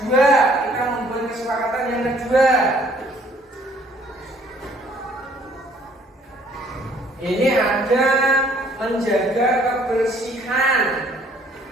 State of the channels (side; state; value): both; normal; correlation 0.60